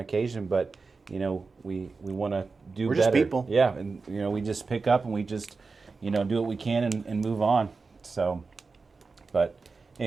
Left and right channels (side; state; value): left; quieter; 4.3 dB